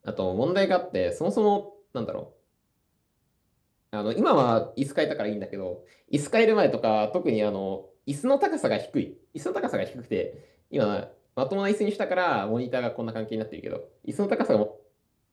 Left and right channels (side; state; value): both; identical; correlation 1.00